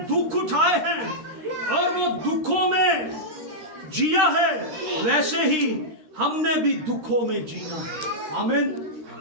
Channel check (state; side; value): late; left; 13 ms